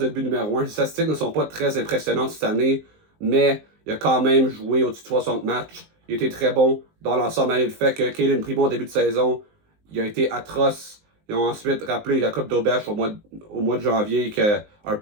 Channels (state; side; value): late; left; 19 ms